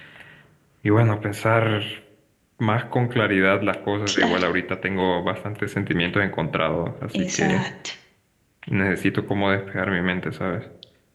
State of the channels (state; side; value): identical; both; correlation 1.00